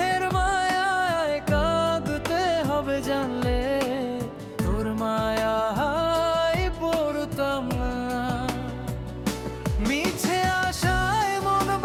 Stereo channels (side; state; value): both; identical; correlation 1.00